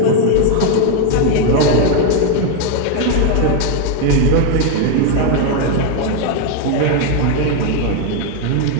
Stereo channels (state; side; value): different; both; correlation 0.01